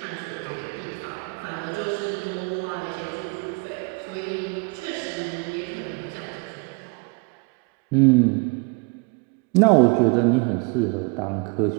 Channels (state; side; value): quieter; left; 31.6 dB